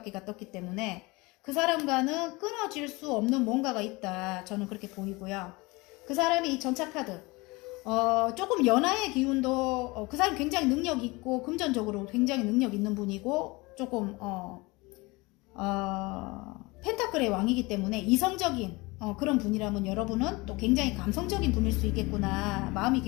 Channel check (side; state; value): right; quieter; 24.0 dB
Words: 떴기 때문에 그 사람과는 끊어질 수 없는 뭔가가 있다, 저는 그렇게 보이고요. 그 사람이 이 전차카드, 조금 연하의 기운도, 그 사람 굉장히 능력 있고 금전적으로 굉장히 능력 있는 분이고, 조금 펜타클의 왕이기 때문에 이성적인 그런 분이라면 여러분은 또 굉장히 감성적인 분일 수 있겠구나. 마음이